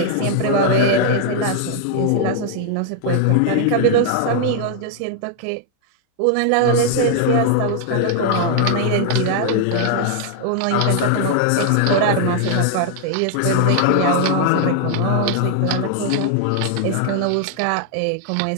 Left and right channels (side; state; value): both; different; correlation 0.00